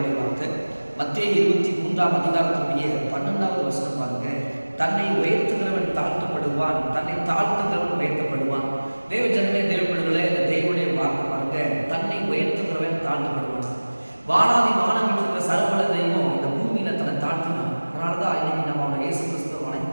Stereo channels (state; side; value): inverted; both; correlation -1.00